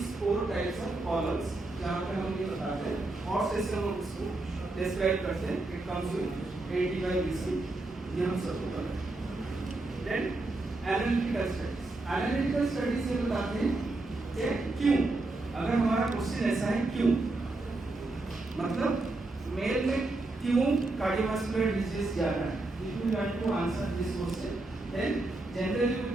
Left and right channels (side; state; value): left; quieter; 3.0 dB